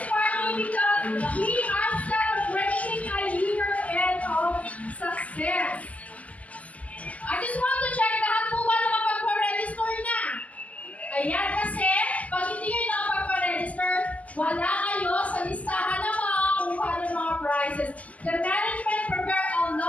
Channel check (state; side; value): late; right; 0.066 ms